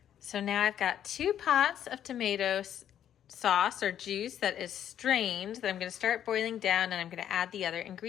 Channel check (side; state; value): right; quieter; 10.2 dB